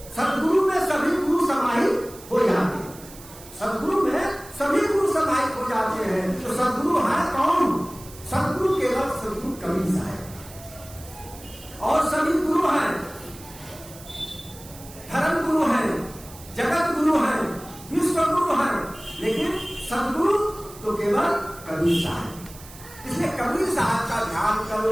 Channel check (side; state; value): right; noise; hiss, 18 dB below the sound